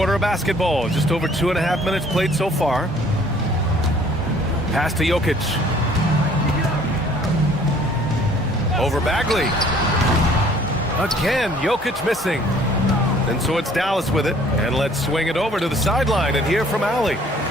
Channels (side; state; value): both; normal; correlation 0.56